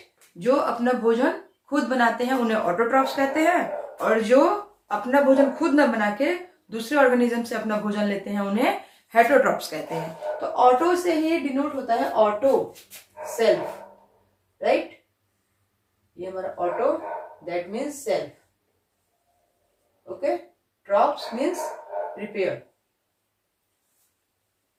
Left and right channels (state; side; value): identical; both; correlation 1.00